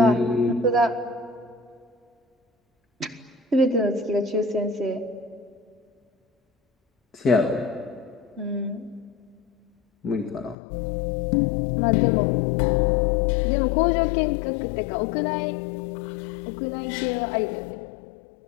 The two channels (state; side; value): drops out; right; at 10.6 s